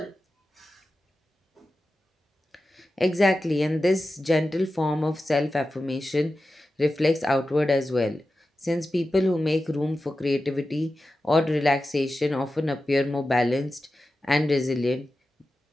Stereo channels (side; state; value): both; normal; correlation 0.93